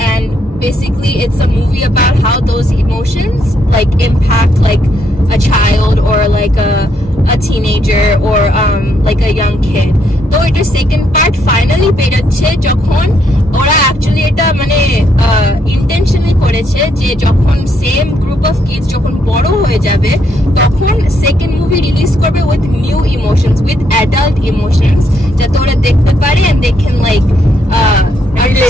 basically it's a movie about how those emotions like impact like a child or like a teenager or like a young kid. তো এটার second part finally বেরোচ্ছে যখন ওরা অ্যাকচুয়ালি এটা মানে ইন্টেনশনালি করেছে যে যখন সেম গ্রুপ অফ কিডস যখন বড় হয়ে যাবে তখন সেকেন্ড মুভি রিলিজ করবে with new emotions with adult emotions যাতে ওরা দেখতে পারে and they can like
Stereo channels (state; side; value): normal; both; correlation 0.74